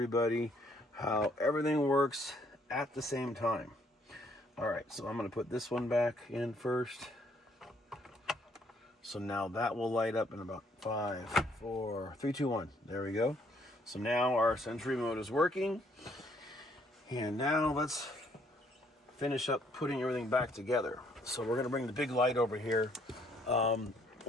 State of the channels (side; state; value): both; normal; correlation 0.66